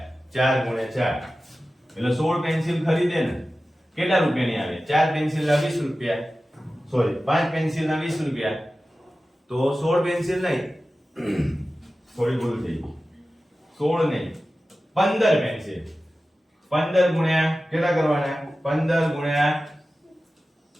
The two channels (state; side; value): normal; both; correlation 0.95